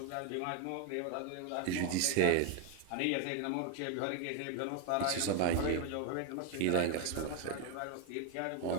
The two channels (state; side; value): different; both; correlation 0.01